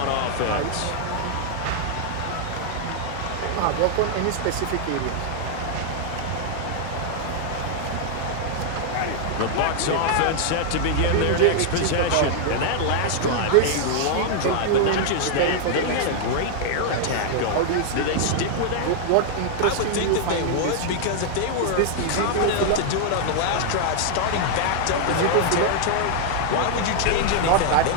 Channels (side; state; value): both; different; correlation 0.00